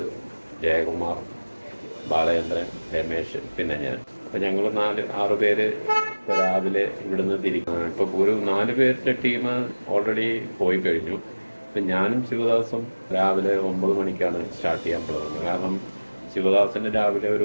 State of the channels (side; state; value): both; inverted; correlation -1.00